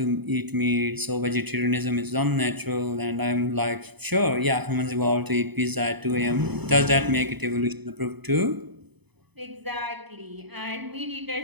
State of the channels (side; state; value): left; late; 0.99 ms